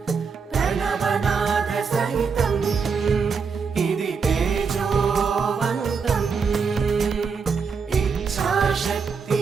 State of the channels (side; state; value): left; quieter; 5.6 dB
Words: ప్రణవనాద సహితం ఇది తేజోవంతం ఇచ్ఛాశక్తి